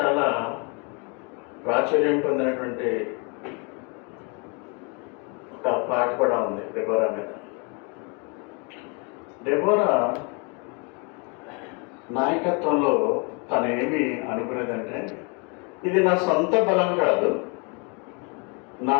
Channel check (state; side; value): quieter; right; 33.5 dB